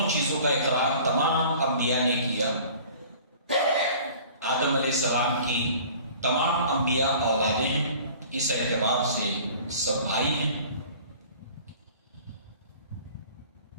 چیزوں کا اقرار تمام انبیاء نے کیا۔ آدم علیہ السلام کی تمام انبیاء اولادیں ہیں، اس اعتبار سے سب بھائی ہیں،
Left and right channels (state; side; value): inverted; both; correlation -0.47